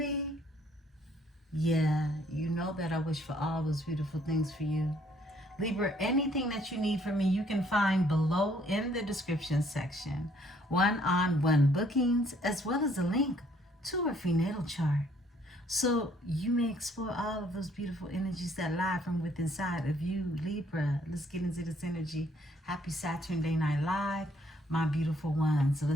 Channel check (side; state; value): both; normal; correlation 0.64